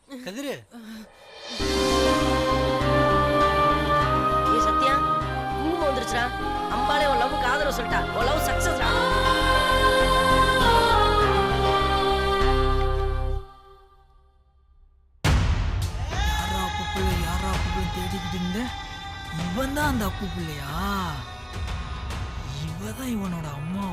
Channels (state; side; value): identical; both; correlation 1.00